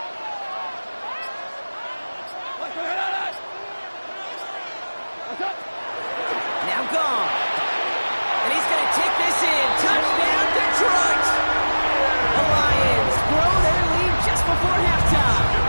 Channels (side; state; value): both; inverted; correlation -1.00